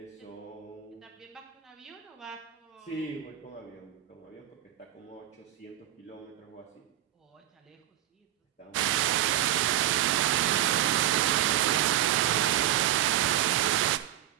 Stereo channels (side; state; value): left; quieter; 12.6 dB